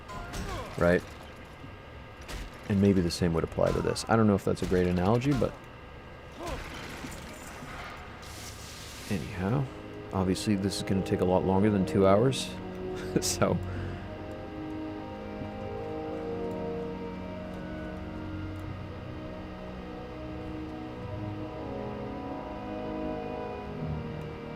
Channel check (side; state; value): both; identical; correlation 1.00